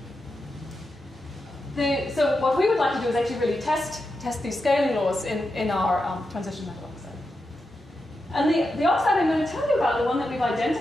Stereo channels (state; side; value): normal; both; correlation 0.88